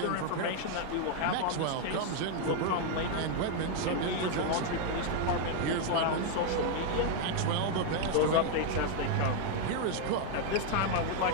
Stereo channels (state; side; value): different; both; correlation 0.00